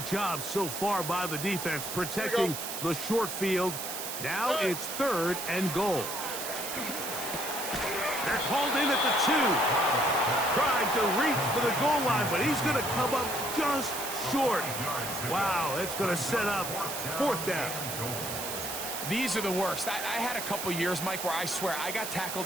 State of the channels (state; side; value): noise; right; hiss, 5 dB below the sound